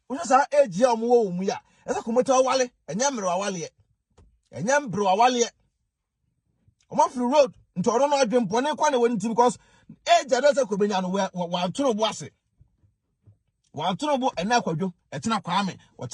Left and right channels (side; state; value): both; identical; correlation 1.00